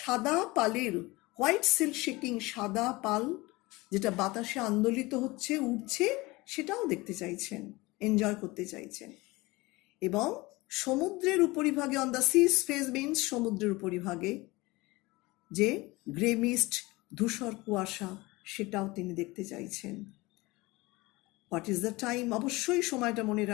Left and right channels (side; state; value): right; quieter; 22.1 dB